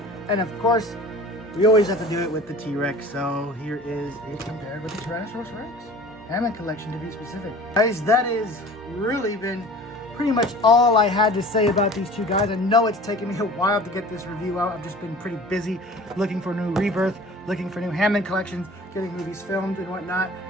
And of course, we always have to do it with the T-Rex. So here is it compared with the Tyrannosaurus Rex. Hammond collection to be specific. Guys, that has really been pretty much all I had to say about these two guys. I know it's taken me a while to get this review out. I've just been pretty busy looking for new Rebirth, looking for new Hammond collections, getting movies filmed and whatnot.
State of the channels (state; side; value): normal; both; correlation 0.43